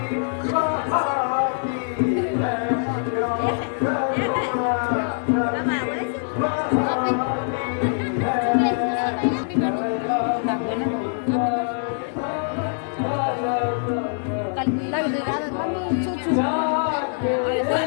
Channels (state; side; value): silent; right; digital silence